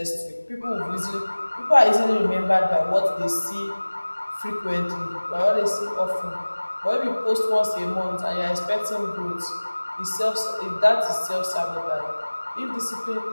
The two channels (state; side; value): inverted; both; correlation -1.00